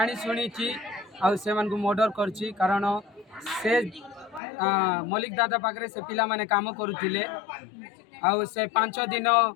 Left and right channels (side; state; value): right; drops out; at 4.4 s